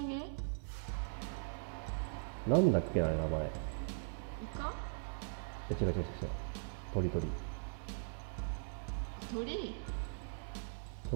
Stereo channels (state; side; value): silent; left; digital silence